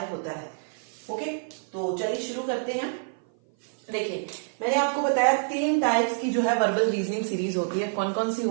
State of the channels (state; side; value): silent; left; 55 dB below the other